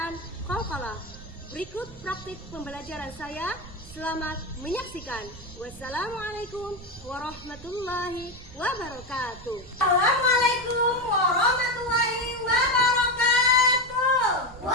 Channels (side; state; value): right; noise; rumble, 17 dB below the sound